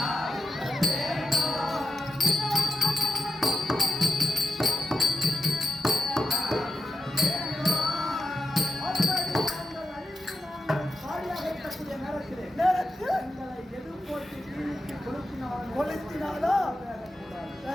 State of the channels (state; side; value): normal; both; correlation 0.89